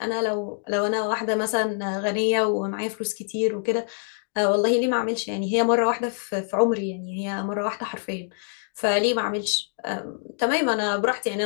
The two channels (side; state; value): right; silent; 62 dB below the other